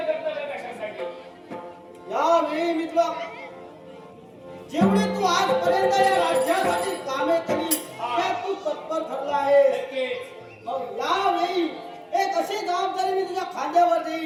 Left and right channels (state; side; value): identical; both; correlation 1.00